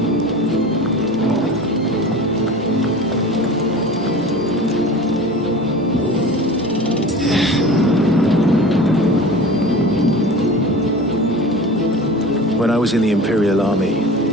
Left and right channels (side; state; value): both; normal; correlation 0.36